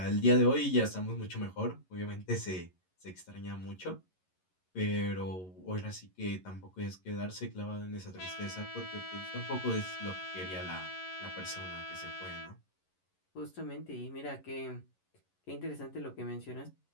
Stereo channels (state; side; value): late; right; 11 ms